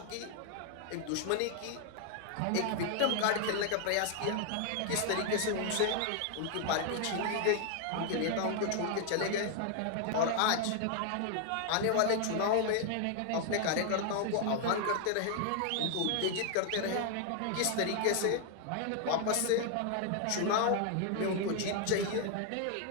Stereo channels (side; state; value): both; different; correlation 0.00